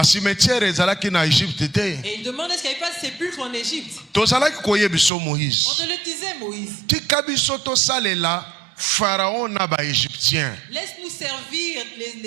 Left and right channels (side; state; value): left; drops out; at 5.1 s